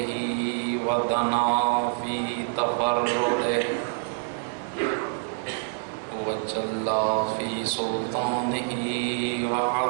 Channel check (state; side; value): silent; left; digital silence